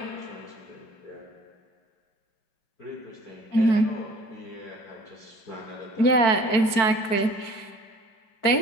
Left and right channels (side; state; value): right; late; 4.6 ms